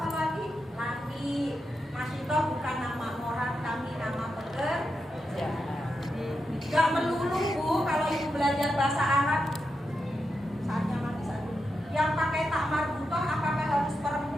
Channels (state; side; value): normal; both; correlation 0.87